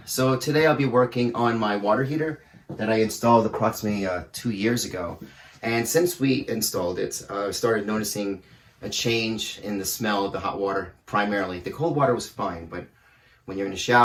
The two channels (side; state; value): both; identical; correlation 1.00